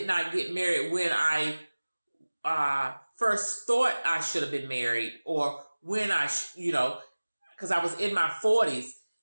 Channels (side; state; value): both; inverted; correlation -1.00